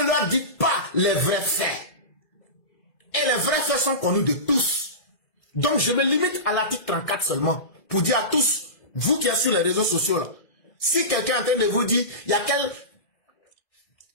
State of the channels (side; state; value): right; late; 2.0 ms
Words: leur dites pas les vrais faits. Et les vrais faits sont connus de tous. Donc je me limite à l'article 34 seulement pour dire à tous, vous qui êtes sur les réseaux sociaux là, si quelqu'un est en train de vous dire, il y a quel